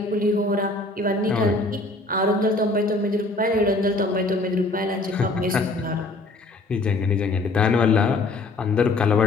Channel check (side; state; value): right; quieter; 3.1 dB